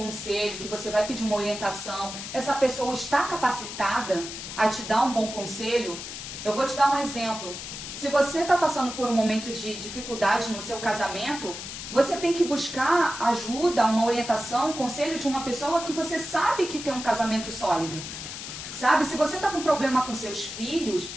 que você vai pedir uma orientação, essa pessoa está capacitada a te dar um bom conselho? Eu vou te dar um exemplo. Se você está passando por um momento de dificuldade no seu casamento, você tem que buscar ajuda, uma orientação, um conselho de uma pessoa que você sabe que tem um casamento sólido. Sabe? Se você está com problema com seus filhos,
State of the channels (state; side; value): noise; left; hiss, 9 dB below the sound